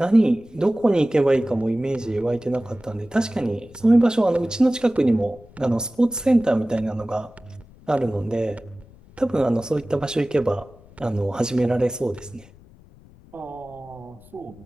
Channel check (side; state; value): left; noise; rumble, 24 dB below the sound